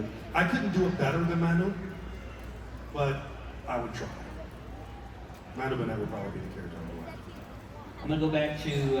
I couldn't do it better than Manu, but I would try. Manu Bennett would probably be the character I would like. I'm gonna go back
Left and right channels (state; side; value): identical; both; correlation 1.00